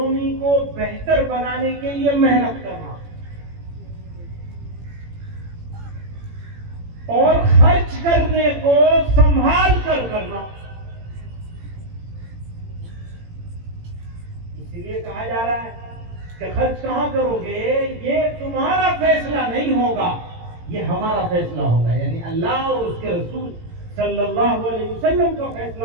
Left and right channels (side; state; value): left; late; 18 ms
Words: को बेहतर बनाने के लिए मेहनत करना और खर्च करने को संभाल कर करना। इसीलिए कहा जा रहा है कि खर्च कहां करोगे ये तुम्हारा फैसला नहीं होगा, ये हमारा फैसला होगा, यानी अल्लाह और उसके रसूल सल्लल्लाहु अलैहि वसल्लम का